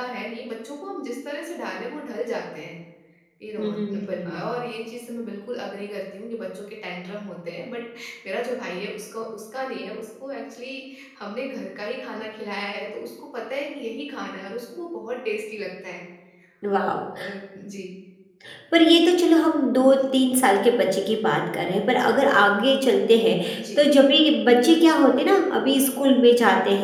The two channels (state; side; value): identical; both; correlation 1.00